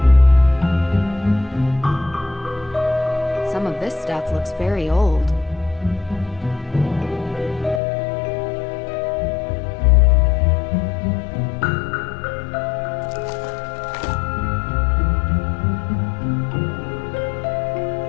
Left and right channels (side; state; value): right; drops out; at 7.8 s